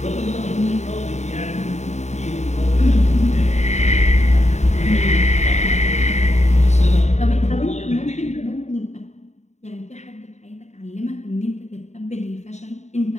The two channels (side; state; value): right; late; 0.33 ms